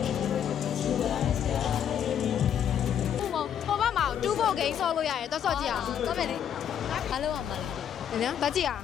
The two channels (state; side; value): quieter; right; 9.1 dB